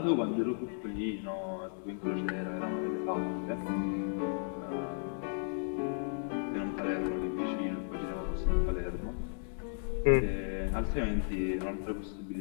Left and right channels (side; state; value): right; silent; digital silence